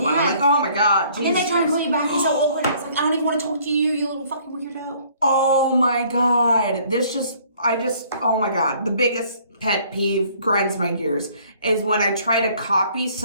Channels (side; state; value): both; inverted; correlation -0.59